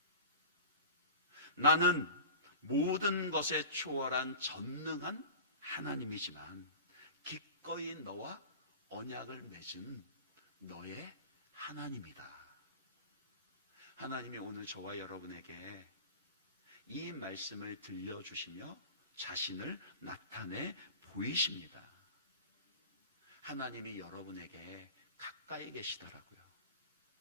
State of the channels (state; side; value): inverted; both; correlation -0.36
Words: 나는 모든 것에 초월한 전능한 하나님이지만 기꺼이 너와 언약을 맺은 너의 하나님이다. 하나님이 오늘 저와 여러분에게 이 말씀을 들려주시며 자신을 나타내 보이십니다. 하나님이 여러분에게 가까이 계시더라고요.